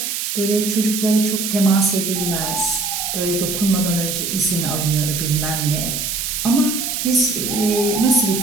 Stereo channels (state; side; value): noise; right; hiss, 2 dB below the sound